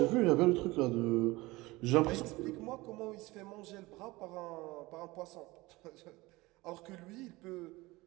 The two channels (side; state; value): left; quieter; 21.1 dB